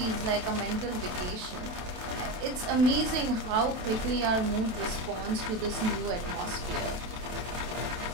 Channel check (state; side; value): late; left; 28 ms